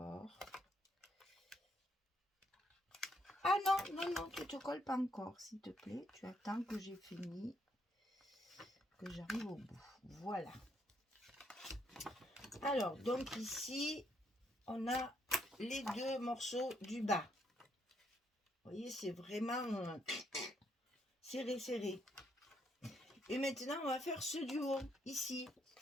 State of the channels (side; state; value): both; normal; correlation 0.73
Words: Ah non, non, non, tu te colles pas encore, s'il te plaît. Tu attends que j'ai fini, que j'arrive au bout. Voilà. Alors, donc ici, on a les deux morceaux du bas. Vous voyez, c'est vraiment serré, serré. Et maintenant, on va faire ceux du haut, ici.